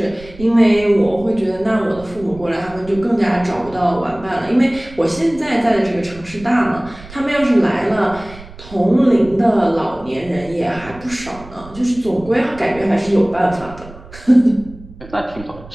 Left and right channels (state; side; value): noise; right; rumble, 18 dB below the sound